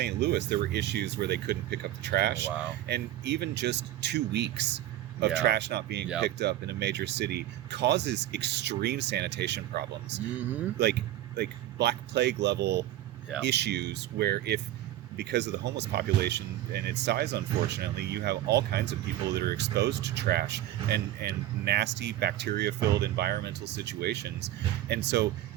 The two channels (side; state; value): left; quieter; 13.5 dB